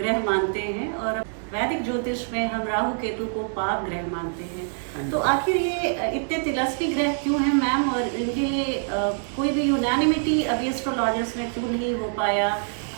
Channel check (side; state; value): left; silent; digital silence